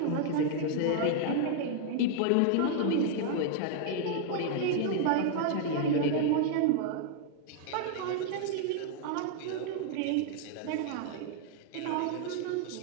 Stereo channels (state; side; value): different; both; correlation 0.00